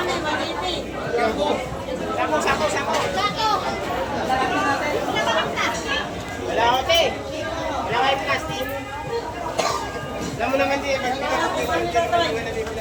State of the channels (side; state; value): both; identical; correlation 1.00